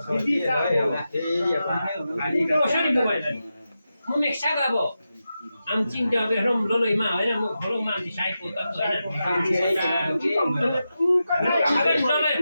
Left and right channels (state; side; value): inverted; both; correlation -0.90